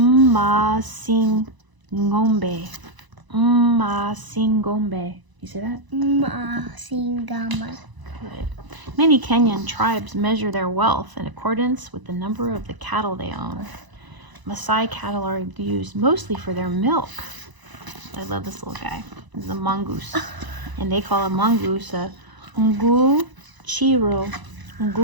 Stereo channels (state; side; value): late; left; 1.0 ms